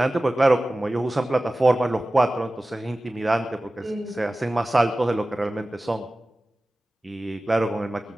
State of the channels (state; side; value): normal; both; correlation 0.96